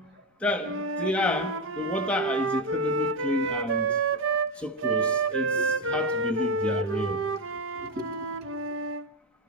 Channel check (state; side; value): normal; both; correlation 0.12